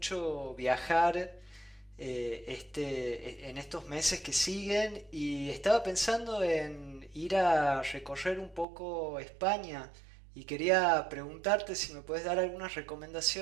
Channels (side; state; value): left; drops out; at 8.7 s